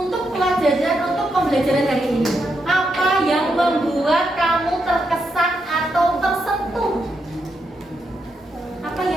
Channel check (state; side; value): normal; both; correlation 0.82